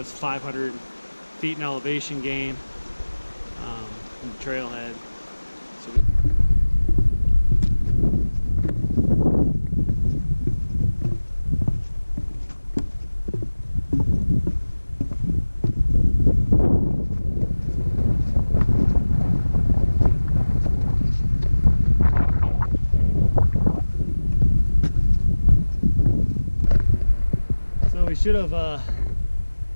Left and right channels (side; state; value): both; inverted; correlation -1.00